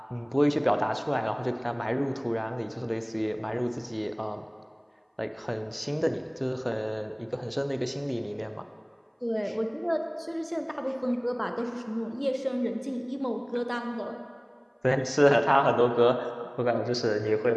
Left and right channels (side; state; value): both; identical; correlation 1.00